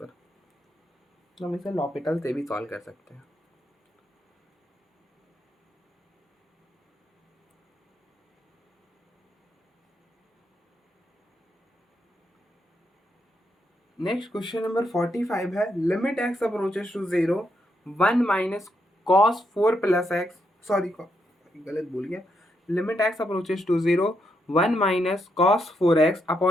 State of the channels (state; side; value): normal; both; correlation 0.80